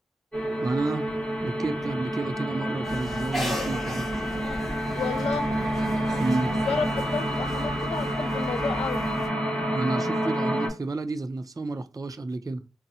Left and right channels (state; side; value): normal; both; correlation 0.86